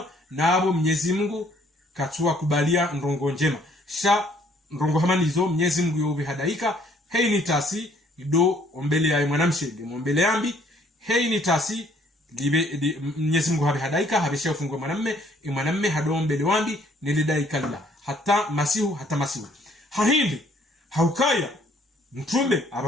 nabo Mwenyezi Mungu katua kubalia ndongo njema sha ndongo hamanizo Mwenyezi Mungu yobi hadaika hei ni tasi do ombele ya mwanamshe ombele yambi hei ni tasi libe Mwenyezi Mungu habe hadaika habe shafungwa mwanamme hado ombele wambi nilidaika la hata masihu hahindi haukaya mtume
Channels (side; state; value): both; normal; correlation 0.63